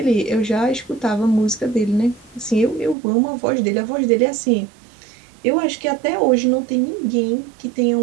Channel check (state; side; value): drops out; left; at 3.0 s